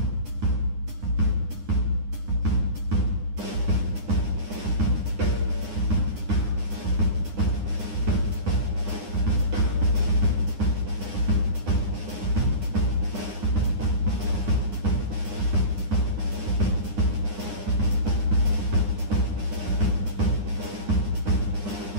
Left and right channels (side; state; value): left; late; 9.8 ms